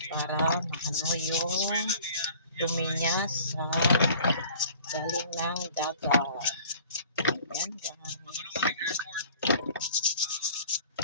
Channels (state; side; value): inverted; both; correlation -0.49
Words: para maano yung dumi niya sa galing ng dagat. Yan guys.